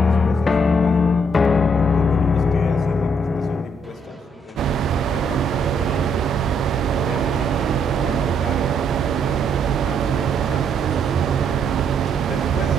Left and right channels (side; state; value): both; normal; correlation 0.71